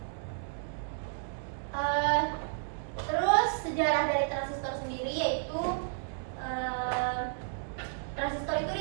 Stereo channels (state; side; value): silent; left; digital silence